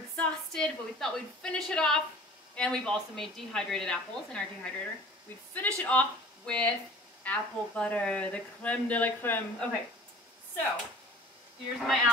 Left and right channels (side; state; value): both; normal; correlation 0.46